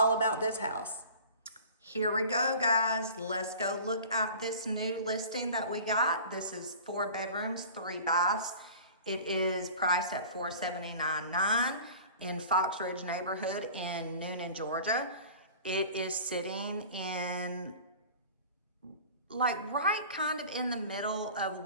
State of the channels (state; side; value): inverted; both; correlation -0.42